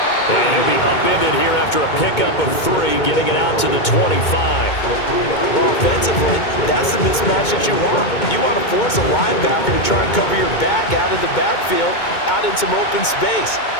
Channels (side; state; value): right; late; 2.2 ms